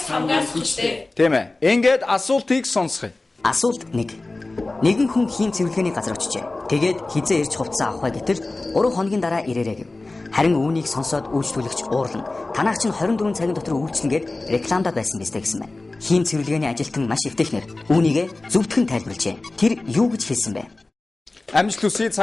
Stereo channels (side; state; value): right; quieter; 3.1 dB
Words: хамгаас хүчтэй. Тийм ээ. Ингээд асуултыг сонсгоё. Асуулт 1. Нэгэн хүн хийн цэвэрлэгээний газар очижээ. Тэгээд хизээ ирж хувцас авах гэтэл 3 хоногийн дараа ирээрэй гэв. Харин үүнийг сонсоод үйлчлүүлэгч уурлан танаас чинь 24 цагийн дотор үйлчлэн гээд рекламадад байсан биз дээ гэсэн байна. Хийн цэвэрлэгээний ажилтан маш эвтэхнэр үүнийгээ зөвдгөн тайлбарлажээ. Тэр юу гэж хэлсэн бэ? Амжилт хүсье,